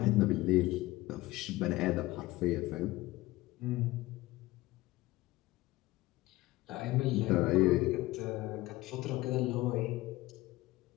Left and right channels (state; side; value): quieter; right; 18.7 dB